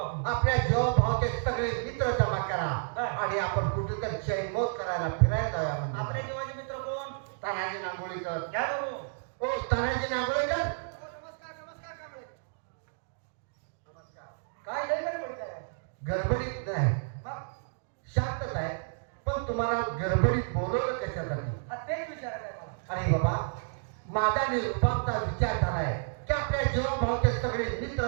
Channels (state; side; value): silent; left; digital silence